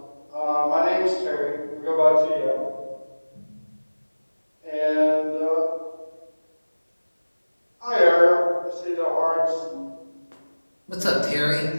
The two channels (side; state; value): both; inverted; correlation -1.00